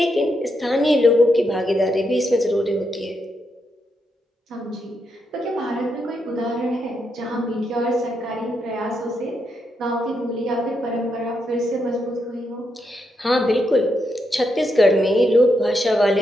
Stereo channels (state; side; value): normal; both; correlation 0.82